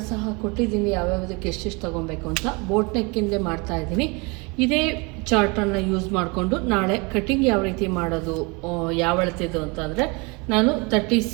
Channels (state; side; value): quieter; left; 29.0 dB